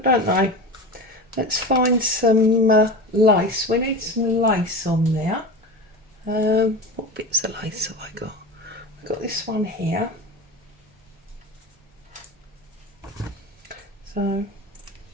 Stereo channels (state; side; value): normal; both; correlation 0.28